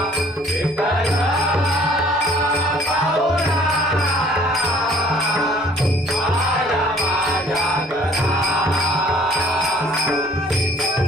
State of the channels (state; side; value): normal; both; correlation 0.56